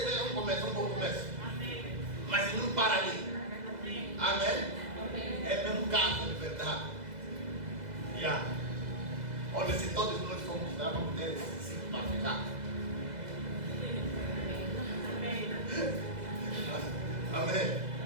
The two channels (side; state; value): left; late; 2.0 ms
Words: um começo, um bom começo. Mas não para ali. Amém? É mesmo casa de verdade. Olha, se todos nós formos lá, vamos ter esse ciclo para ficar. Amém?